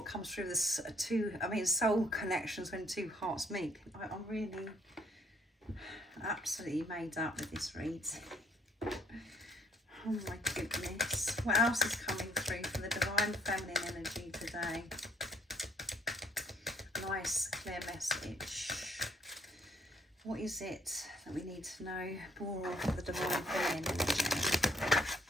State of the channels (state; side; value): normal; both; correlation 0.64